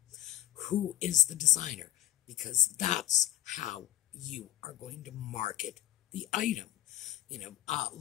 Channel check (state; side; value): quieter; right; 13.8 dB